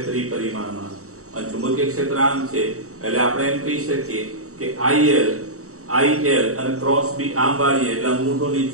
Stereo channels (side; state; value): left; late; 0.65 ms